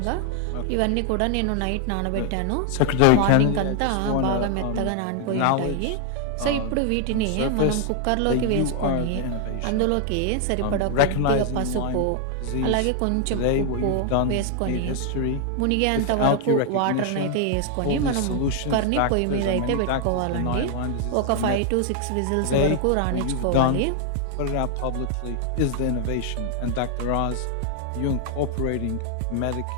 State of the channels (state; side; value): different; both; correlation 0.00